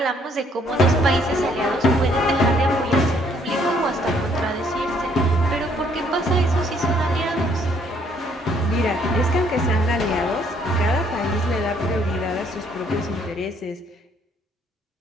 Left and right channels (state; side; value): normal; both; correlation 0.66